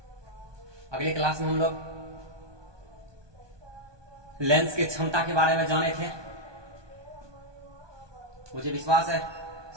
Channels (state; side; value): late; left; 1.2 ms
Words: अगले क्लास में हम लोग लेंस की क्षमता के बारे में जाने थे। मुझे विश्वास है